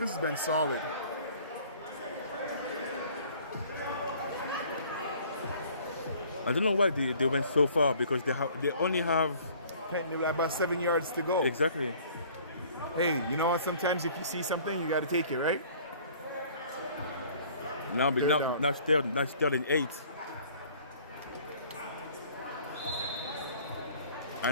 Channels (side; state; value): both; inverted; correlation -0.53